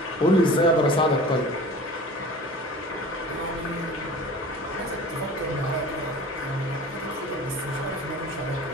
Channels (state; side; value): normal; both; correlation 0.40